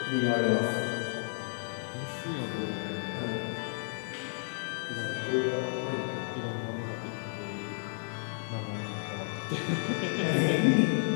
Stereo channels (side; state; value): right; silent; digital silence